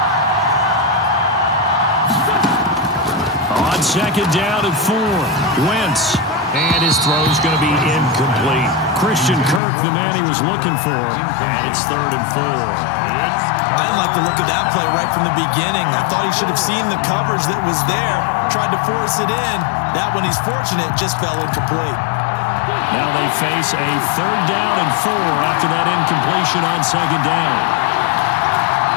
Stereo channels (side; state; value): right; drops out; at 9.6 s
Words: On 2nd down and 4, Wentz. And his throw's going to be incomplete. Christian Kirk, the man he was looking for. And it's 3rd and 4. I didn't like the look of that play right from the beginning. I thought he should have seen the coverage that was there, tried to force it in. That one, he's fortunate, just fell incomplete. Now they face a 3rd down and 4 after that incompletion on 2nd down.